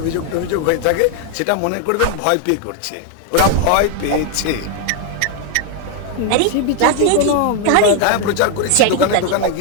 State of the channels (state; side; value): different; both; correlation 0.01